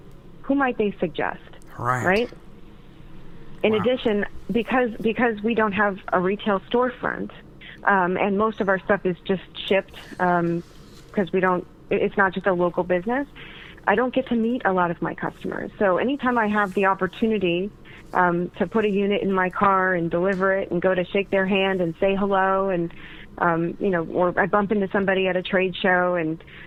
who might they suggest? Right. In addition, because we don't have a retail storefront, and most of our stuff is just shipped, because it's not just a local business, I don't get to meet a lot of my customers. So anytime I have the opportunity to put a unit in my car and deliver it and go to shake their hand and say hello, and or I bump into somebody at a trade show and,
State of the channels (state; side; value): identical; both; correlation 1.00